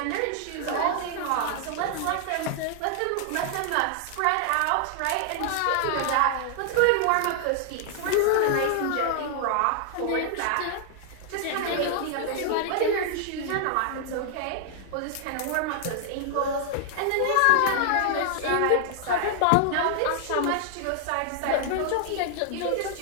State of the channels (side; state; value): both; different; correlation 0.00